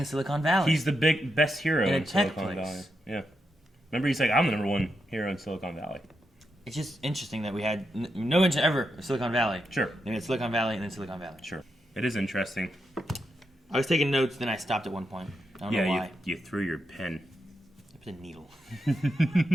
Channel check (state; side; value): normal; both; correlation 0.85